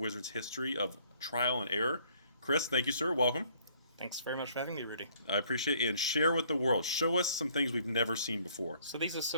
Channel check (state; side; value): inverted; both; correlation -0.61